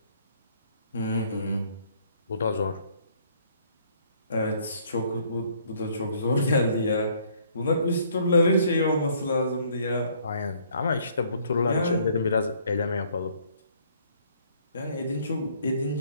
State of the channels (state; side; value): inverted; both; correlation -0.62